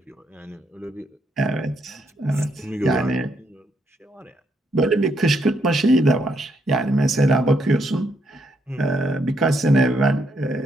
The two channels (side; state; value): both; normal; correlation 0.75